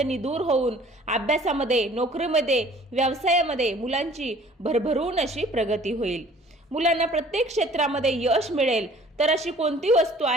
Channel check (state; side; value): normal; both; correlation 0.53